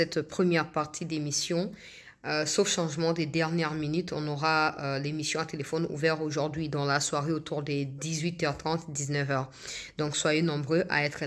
première partie d'émission. Sauf changement des dernières minutes, on aura l'émission à téléphone ouverte aujourd'hui dans la soirée autour des 18h30, 19h. Donc soyez nombreux à être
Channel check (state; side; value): identical; both; correlation 1.00